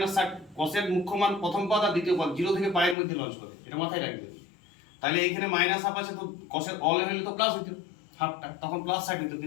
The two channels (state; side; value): drops out; right; at 3.0 s